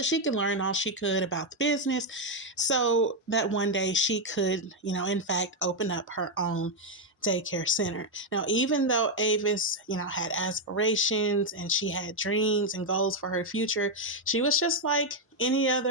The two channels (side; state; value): both; normal; correlation 0.02